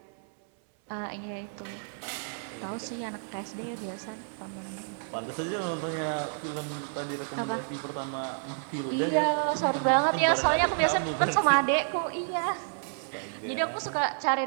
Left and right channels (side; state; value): left; silent; 58 dB below the other